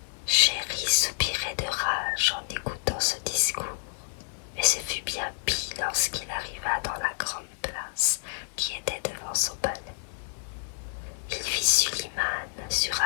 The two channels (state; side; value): silent; right; digital silence